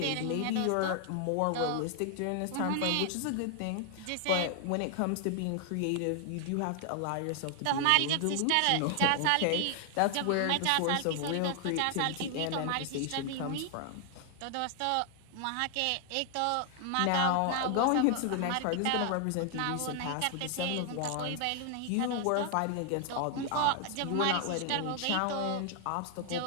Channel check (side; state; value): both; different; correlation 0.00